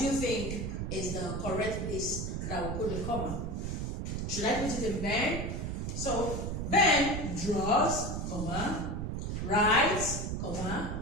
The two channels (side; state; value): right; noise; rumble, 3 dB below the sound